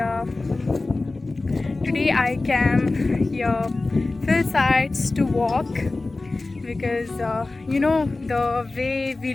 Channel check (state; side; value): quieter; right; 3.3 dB